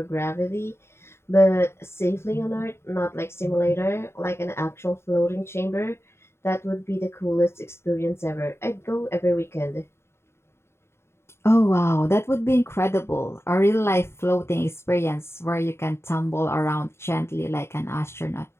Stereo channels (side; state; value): right; late; 0.12 ms